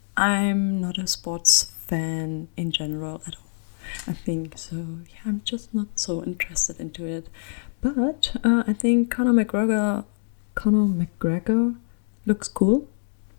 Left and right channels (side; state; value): right; silent; digital silence